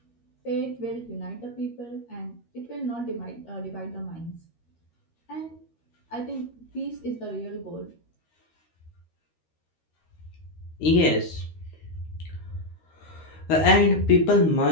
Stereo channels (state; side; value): late; right; 13 ms